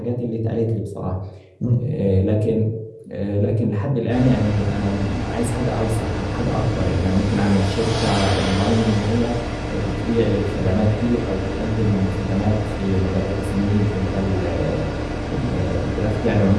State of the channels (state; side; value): identical; both; correlation 1.00